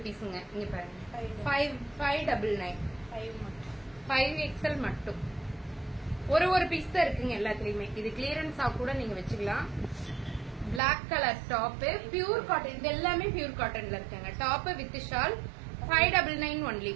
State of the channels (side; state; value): left; drops out; at 10.8 s